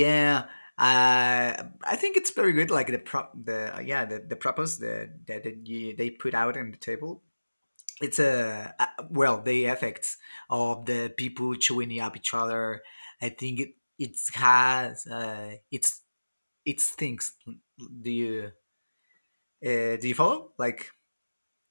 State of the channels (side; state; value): both; inverted; correlation -1.00